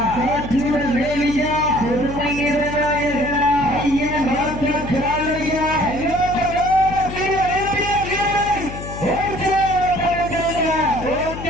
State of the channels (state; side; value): noise; left; hum, 10 dB below the sound